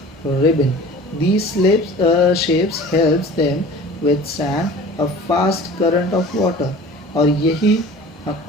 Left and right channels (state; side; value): normal; both; correlation 0.42